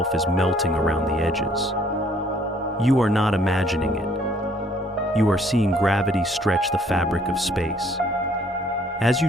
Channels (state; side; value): normal; both; correlation 0.62